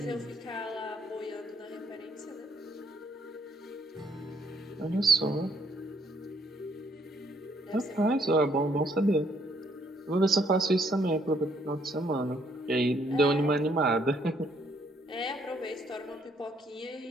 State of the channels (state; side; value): normal; both; correlation 0.68